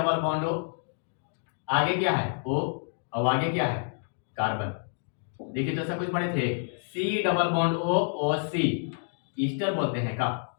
बॉन्ड O, आगे क्या है O, और आगे क्या है कार्बन। देखिए तो सब कुछ पढ़े थे, C double bond O OC, Easter बोलते हैं का,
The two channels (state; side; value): silent; right; digital silence